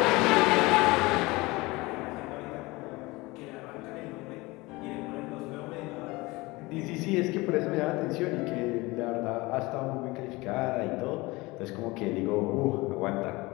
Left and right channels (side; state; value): right; quieter; 22.5 dB